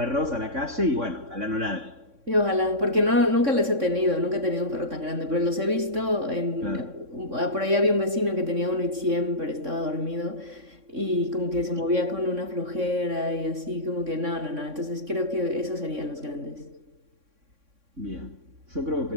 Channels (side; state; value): left; late; 3.6 ms